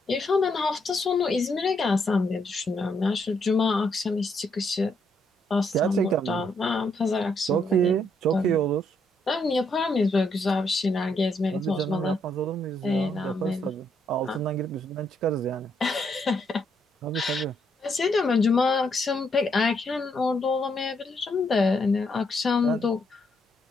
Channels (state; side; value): normal; both; correlation 0.75